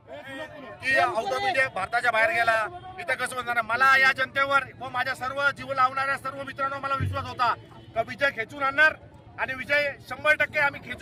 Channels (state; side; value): identical; both; correlation 1.00